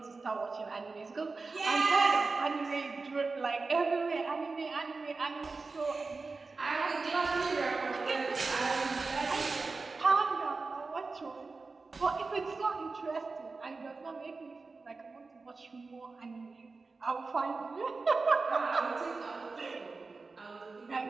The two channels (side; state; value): left; quieter; 4.0 dB